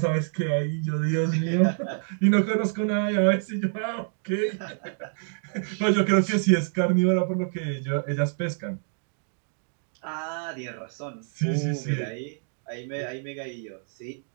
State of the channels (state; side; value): silent; left; digital silence